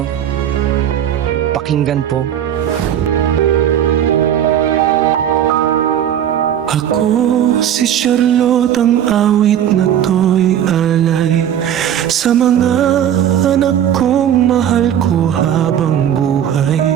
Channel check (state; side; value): quieter; left; 10.0 dB